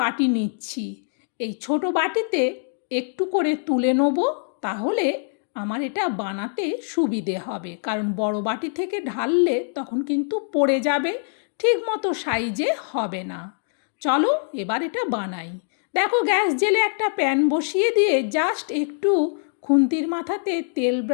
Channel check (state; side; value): silent; right; digital silence